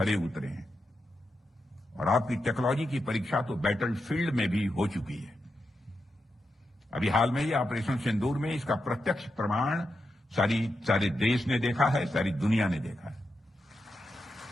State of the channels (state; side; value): normal; both; correlation 0.87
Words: उतरे हैं और आपकी टेक्नोलॉजी की परीक्षा तो बैटल फील्ड में भी हो चुकी है। अभी हाल में ही ऑपरेशन सिंदूर में इसका प्रत्यक्ष प्रमाण सारे देश ने देखा है, सारी दुनिया ने देखा है।